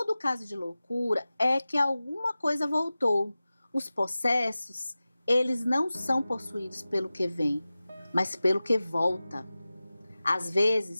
caso de loucura é que alguma coisa voltou. Os possessos, eles não são possuídos pelo que vem, mas pelo que volta. Às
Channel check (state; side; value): inverted; both; correlation -0.96